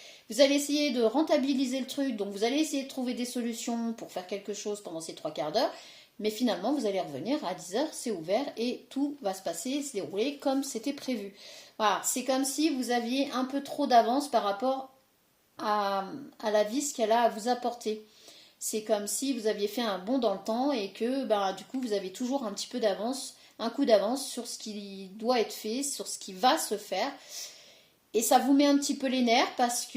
Vous allez essayer de rentabiliser le truc, donc vous allez essayer de trouver des solutions pour faire quelque chose pendant ces 3/4 d'heure, mais finalement vous allez revenir à 10h, c'est ouvert et tout va se passer, se dérouler comme c'était prévu. Voilà, c'est comme si vous aviez un peu trop d'avance par rapport à la vie, ce qu'elle a à vous apporter. C'est comme si vous aviez fait un bond dans le temps et que du coup vous avez toujours un petit peu d'avance, un coup d'avance sur ce qui doit être fait, sur ce qui va se faire. Et ça vous met un petit peu les nerfs parce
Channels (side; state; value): both; identical; correlation 1.00